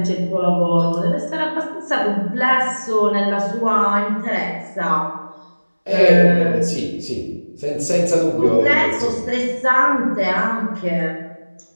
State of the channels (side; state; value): both; inverted; correlation -1.00